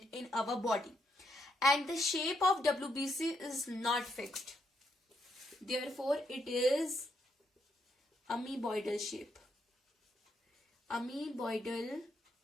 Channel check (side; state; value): both; normal; correlation 0.78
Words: in our body. And the shape of WBC is not fixed. Therefore, it is amoeboidal shape. Amoeboidal